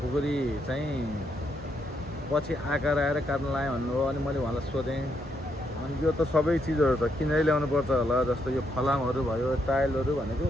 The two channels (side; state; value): both; normal; correlation 0.78